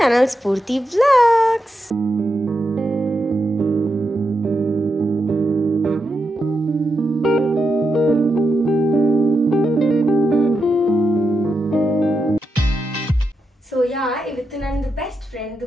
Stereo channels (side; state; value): both; normal; correlation 0.86